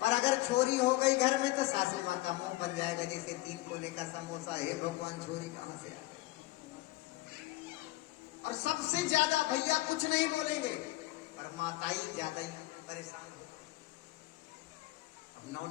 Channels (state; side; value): quieter; right; 19.6 dB